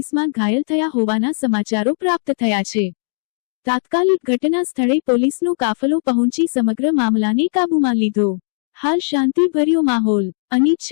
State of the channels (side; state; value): right; silent; digital silence